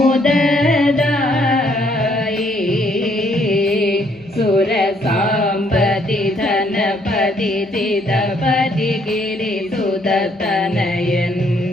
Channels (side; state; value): both; normal; correlation 0.68